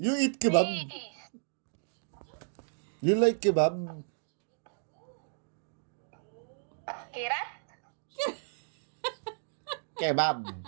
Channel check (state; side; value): silent; left; digital silence